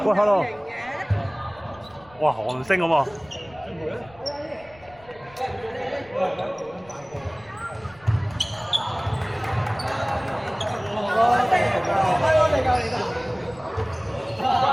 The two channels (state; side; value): noise; left; rumble, 25 dB below the sound